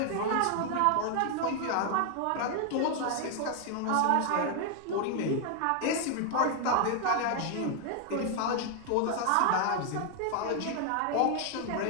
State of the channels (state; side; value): different; both; correlation 0.00